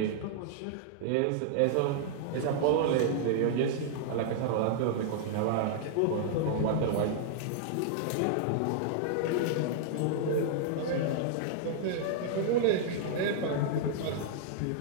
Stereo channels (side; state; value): both; different; correlation -0.01